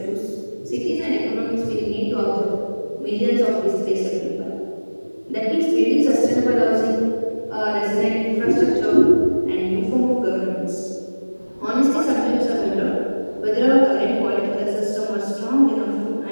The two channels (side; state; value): both; inverted; correlation -1.00